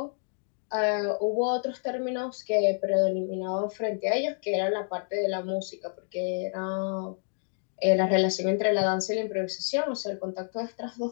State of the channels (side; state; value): right; silent; 59 dB below the other